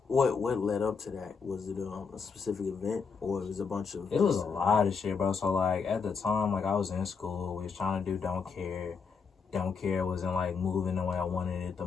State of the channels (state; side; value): quieter; right; 5.6 dB